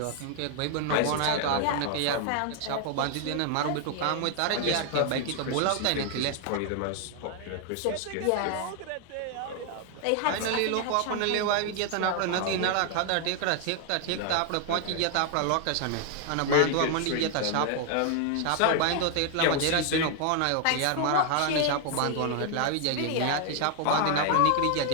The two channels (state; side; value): different; both; correlation 0.00